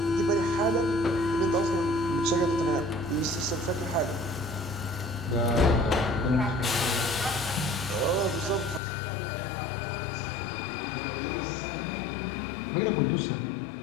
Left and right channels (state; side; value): drops out; right; at 8.8 s